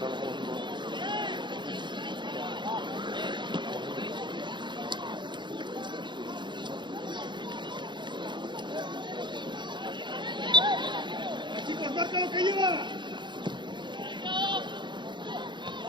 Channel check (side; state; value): left; late; 0.22 ms